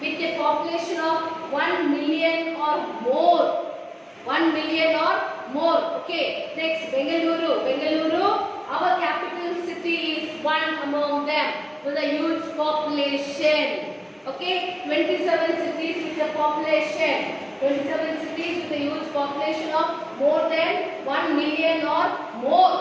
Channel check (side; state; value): both; identical; correlation 1.00